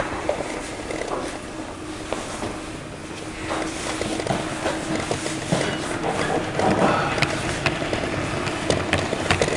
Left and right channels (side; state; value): both; identical; correlation 1.00